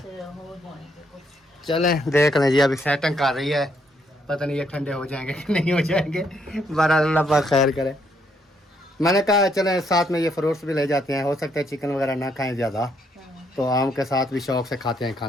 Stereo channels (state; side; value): normal; both; correlation 0.73